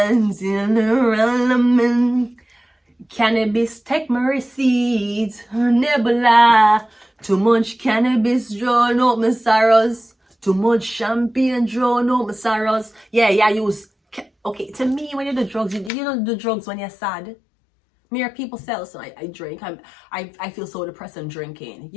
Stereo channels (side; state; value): right; drops out; at 15.9 s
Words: cannabis, take my receipts, nebula, too much cannabis, drawn up my sorrows, too much champagne, drawn up my sorrows. Yeah, use, okay, to me, when you do drugs, you don't do drugs when you're sad. Me or people sell, so I drink, I feel so depressed I'm drinking.